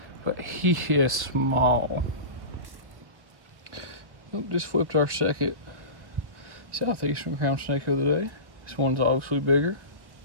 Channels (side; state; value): left; late; 1.1 ms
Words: But he is small. Just flipped our second southeastern crown snake of the day. This one's obviously bigger.